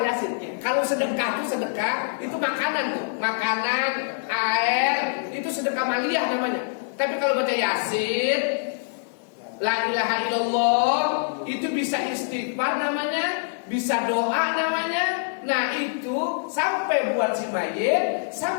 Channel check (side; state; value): right; silent; digital silence